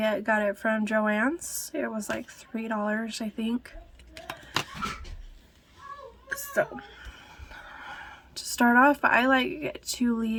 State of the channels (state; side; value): identical; both; correlation 1.00